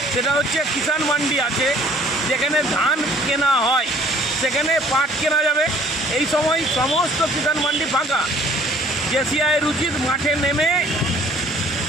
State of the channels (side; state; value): both; normal; correlation 0.56